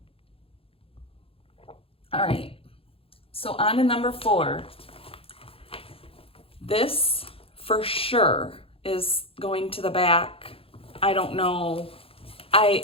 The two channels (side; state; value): right; late; 0.27 ms